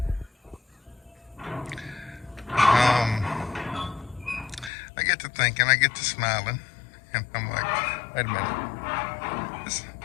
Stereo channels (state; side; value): drops out; right; at 4.7 s